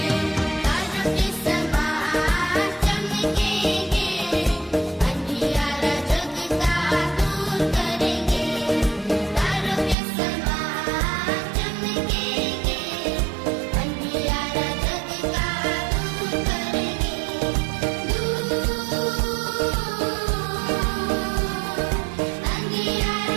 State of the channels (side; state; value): left; drops out; at 10.0 s